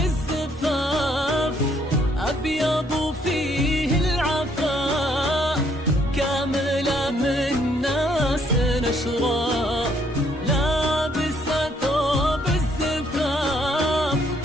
أبيض وفيه العفاف، كاملة من ناس أشراف. لابسة ثوب الزفاف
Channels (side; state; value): both; normal; correlation 0.68